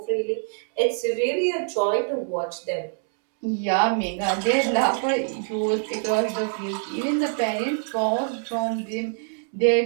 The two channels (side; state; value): left; silent; 62 dB below the other